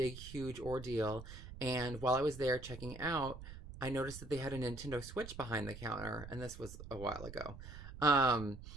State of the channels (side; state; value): right; noise; rumble, 12 dB below the sound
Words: huge ordeal. And while I was there checking out, I noticed that they had a Nintendo Switch behind the counter, and this was a while ago. Um,